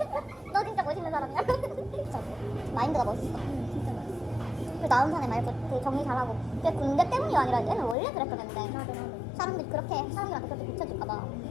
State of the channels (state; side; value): drops out; right; at 8.0 s